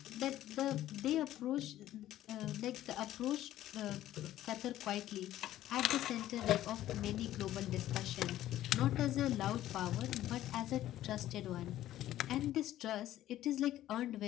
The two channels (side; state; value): right; quieter; 13.5 dB